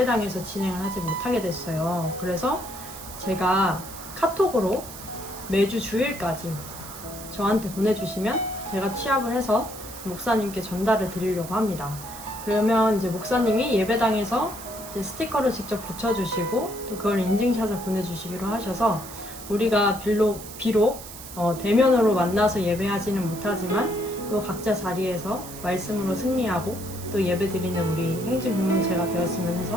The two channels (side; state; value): right; noise; hiss, 13 dB below the sound